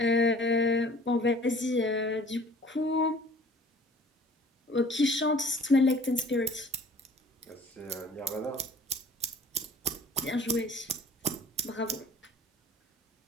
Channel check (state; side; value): normal; both; correlation 0.49